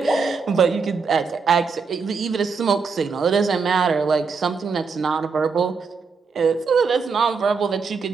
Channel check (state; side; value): quieter; left; 5.1 dB